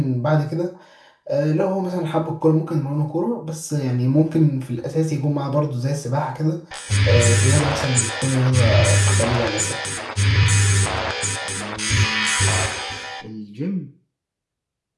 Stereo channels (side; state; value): both; identical; correlation 1.00